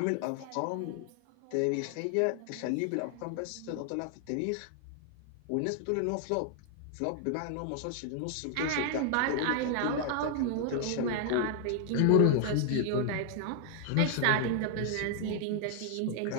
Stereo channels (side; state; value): both; different; correlation 0.00